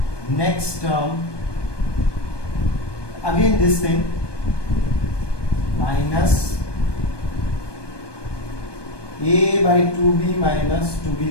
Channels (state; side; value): late; right; 1.2 ms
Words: next term. Again, this thing minus a by 2b minus